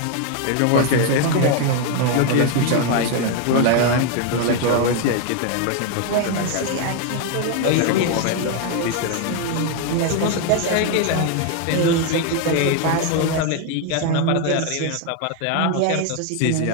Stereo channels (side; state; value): both; different; correlation 0.01